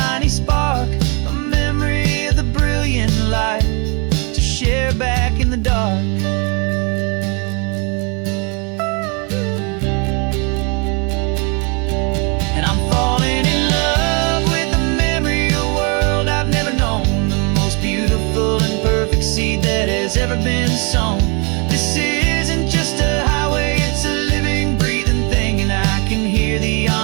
spark, a memory of the brilliant light to share back in the dark. And I'm falling in love with the memory of a world I've never known, the most beautiful and perfect seed that has ever been sown. This isn't just a highway, it's a living, breathing thing, and I can hear the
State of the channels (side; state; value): left; quieter; 33.2 dB